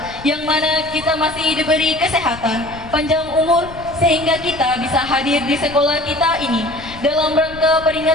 yang mana kita masih diberi kesehatan, panjang umur, sehingga kita bisa hadir di sekolah kita ini dalam rangka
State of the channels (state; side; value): noise; left; rumble, 16 dB below the sound